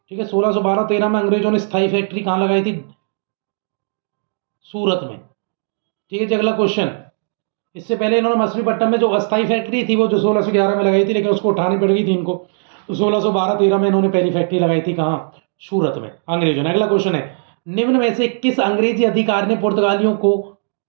ठीक है, 1612-13 में अंग्रेजों ने स्थायी फैक्ट्री कहां लगाई थी? सूरत में। ठीक है जी, अगला क्वेश्चन, इससे पहले इन्होंने मछलीपट्टनम में जो अस्थाई फैक्ट्री थी वो जो 1611 में लगाई थी, लेकिन उसको उठानी पड़ गई थी इनको। तो 1612-13 में इन्होंने पहली फैक्ट्री लगाई थी कहाँ? सूरत में, अंग्रेजों ने। अगला क्वेश्चन है, निम्न में से किस अंग्रेजी अधिकारी ने पुर्तगालियों को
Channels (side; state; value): left; silent; digital silence